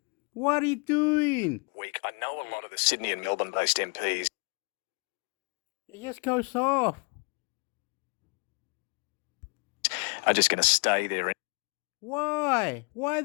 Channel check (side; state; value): right; quieter; 33.3 dB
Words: What are you doing? Week. I know a lot of the Sydney and Melbourne-based MPs. It just goes off. Are just going to stay there Why? Why